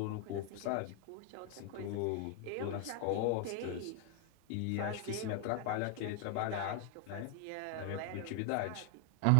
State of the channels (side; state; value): both; different; correlation 0.00